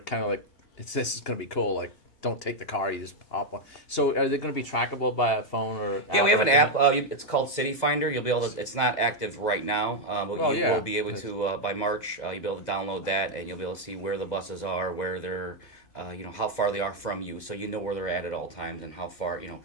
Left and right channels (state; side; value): late; right; 2.0 ms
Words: of like, this is going to be cool. Like, don't take the car, you just hop on. So, are they going to be trackable by a phone or? yeah, we have an or app. It's called City Finder. You'll be able to. It's not active right now, but Well, you yeah. will be able to by March. You'll be able to download that, and you'll be able to see where the buses are, where they're, how far they are from you, so you know where they're at all times and how far.